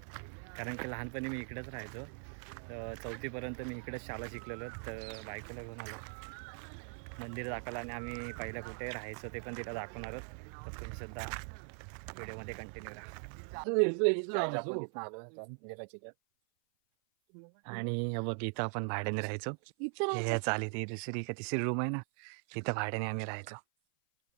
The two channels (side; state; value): left; silent; 51 dB below the other